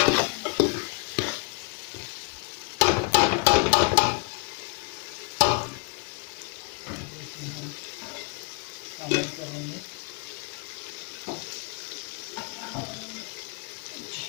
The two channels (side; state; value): right; quieter; 32.5 dB